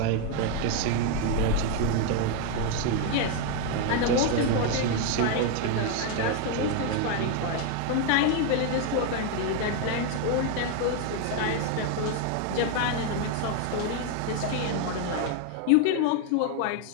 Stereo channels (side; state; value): both; different; correlation 0.01